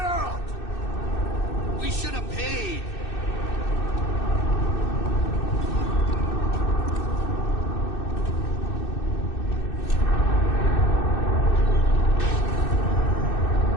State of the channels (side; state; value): right; late; 2.6 ms